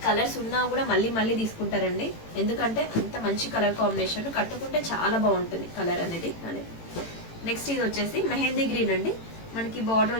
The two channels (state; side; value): late; right; 18 ms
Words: కలర్స్ ఉన్నా కూడా మళ్ళీ మళ్ళీ తీసుకుంటారండి, ఎందుకంటే అంత మంచి కలర్ కాంబినేషన్. కట్టుకుంటే చాలా బాగుంటుంది కలర్ అనేది. నెక్స్ట్ ఇది వచ్చేసి మెహందీ గ్రీన్ అండి. మనకి బార్డర్